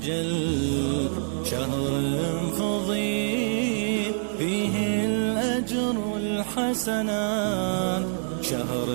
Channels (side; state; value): left; silent; digital silence